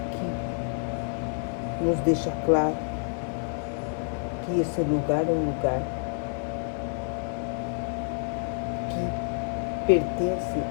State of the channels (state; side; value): silent; right; 59 dB below the other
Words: nos deixa claro que esse lugar é um lugar que pertence